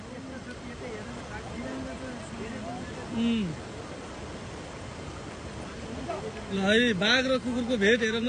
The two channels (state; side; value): identical; both; correlation 1.00